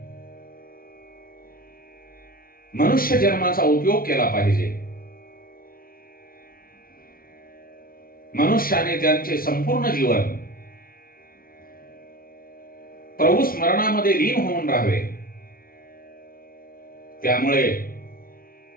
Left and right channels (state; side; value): late; right; 0.43 ms